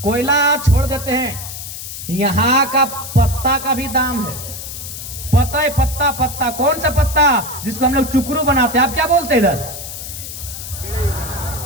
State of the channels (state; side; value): noise; left; hiss, 9 dB below the sound